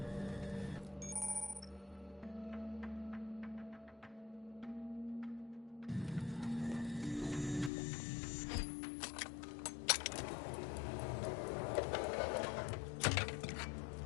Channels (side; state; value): right; drops out; at 7.7 s